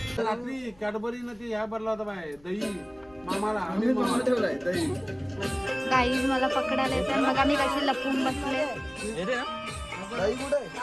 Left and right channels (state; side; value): noise; left; rumble, 28 dB below the sound